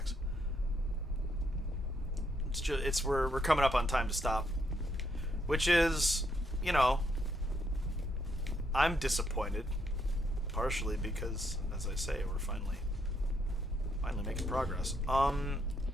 It's we're coming up on time to stop. Which is, you know, I'm disappointed, partially because, as I say, we're finally making progress.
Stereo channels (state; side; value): normal; both; correlation 0.75